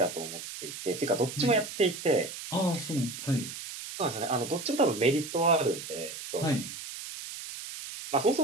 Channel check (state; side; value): noise; right; hiss, 10 dB below the sound